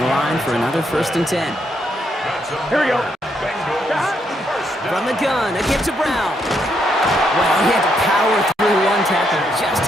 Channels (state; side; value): normal; both; correlation 0.77